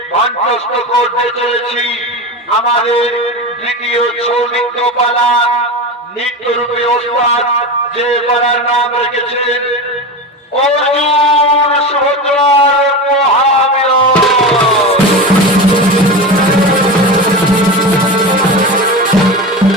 মঞ্চস্থ করতে চলেছি আমাদের দ্বিতীয় ছৌ নৃত্যপালা নৃত্যরূপে ওস্তাদ যে পালার নাম রেখেছেন অর্জুন সুভদ্রার মহামিলন।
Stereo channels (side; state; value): both; normal; correlation 0.24